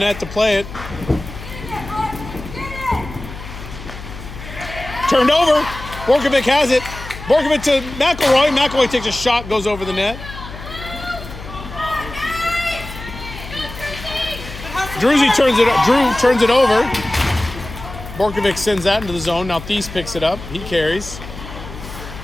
to play it. Turned over. Borkovic has it. Borkovic to McElroy. McElroy takes a shot, goes over the net. Drew turns it over. Borkovic sends that into the zone. Now Thies picks it up. He carries.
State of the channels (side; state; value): left; noise; hum, 12 dB below the sound